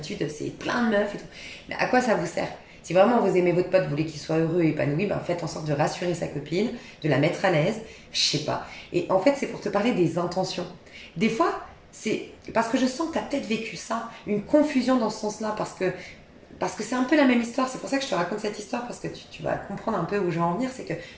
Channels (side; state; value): both; identical; correlation 1.00